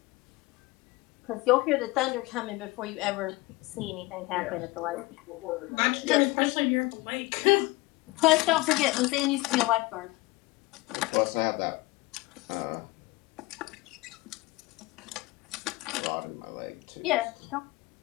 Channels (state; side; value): quieter; right; 21.6 dB